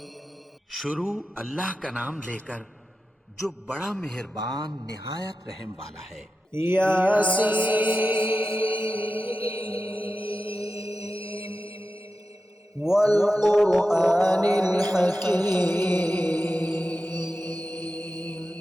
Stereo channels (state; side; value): normal; both; correlation 0.91